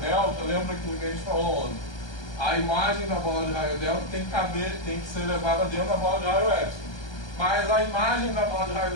lembra que a gente falou ontem? A imagem da bola de raio delta tem que ser levada dentro da bola de raio epsilon. Mas a imagem da bola de raio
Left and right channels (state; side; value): late; right; 1.3 ms